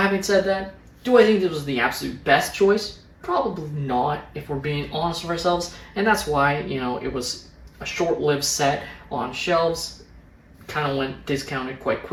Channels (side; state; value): both; identical; correlation 1.00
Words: said that, do I think this was the absolute best choice? Probably not, if we're being honest with ourselves. And that's why, it was a short-lived set on shelves. Kind of went discounted quite